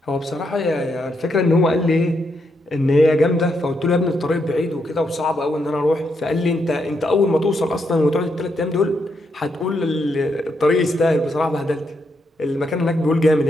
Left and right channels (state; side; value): normal; both; correlation 0.79